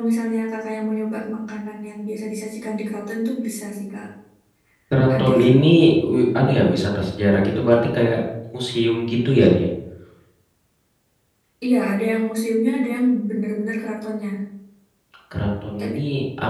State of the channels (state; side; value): identical; both; correlation 1.00